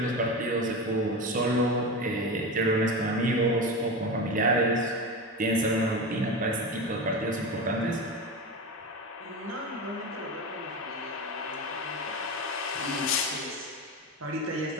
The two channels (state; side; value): normal; both; correlation 0.22